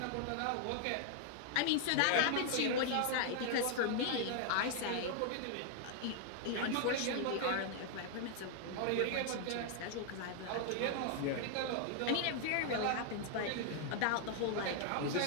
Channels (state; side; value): different; both; correlation -0.01